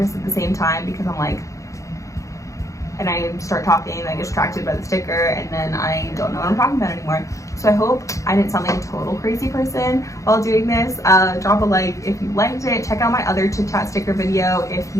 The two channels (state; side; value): late; right; 0.15 ms